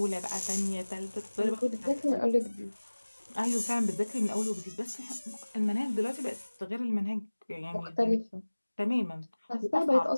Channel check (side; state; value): both; inverted; correlation -1.00